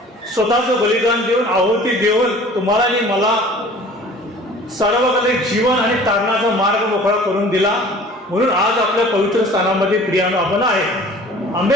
स्वतःचं बलिदान देऊन, आहुती देऊन तुम्हाला आणि मला सर्वकालिक जीवन आणि तारणाचा मार्ग मोकळा करून दिला. म्हणून आज आपल्या पवित्र स्थानामध्ये प्रियानो आपण आहे.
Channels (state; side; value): normal; both; correlation 0.47